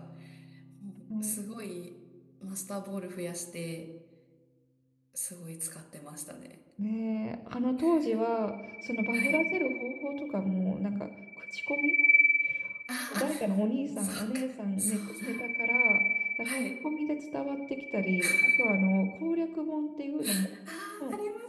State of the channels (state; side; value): identical; both; correlation 1.00